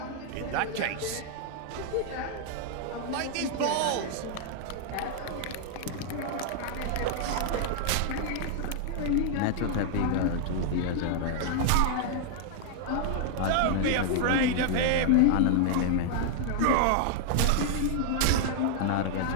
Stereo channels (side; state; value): both; different; correlation 0.00